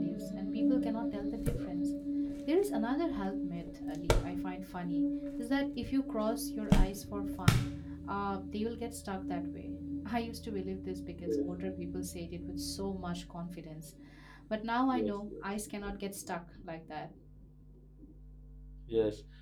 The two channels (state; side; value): identical; both; correlation 1.00